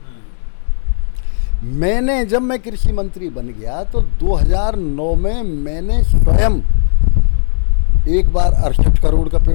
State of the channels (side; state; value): right; silent; digital silence